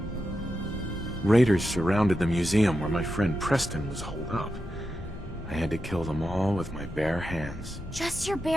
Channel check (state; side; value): normal; both; correlation 0.88